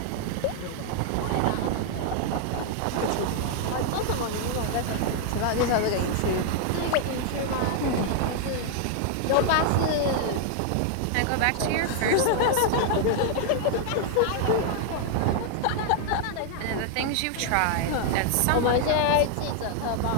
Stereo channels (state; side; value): different; both; correlation 0.00